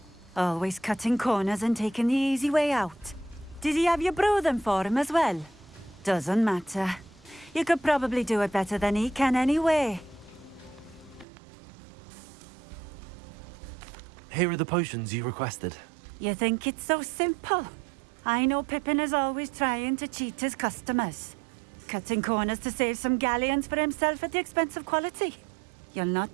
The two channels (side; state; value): left; drops out; at 11.2 s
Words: Always cutting corners and taking the easy way out. Did he have you brew them for him as well? Doesn't matter. You could probably do it better than he can anyway. Here are the potions you requested. You think it's so simple? I know Pippin is always trying to cheat his customers. Cutting corners to save some galleons for himself at the expense of quality. You'll not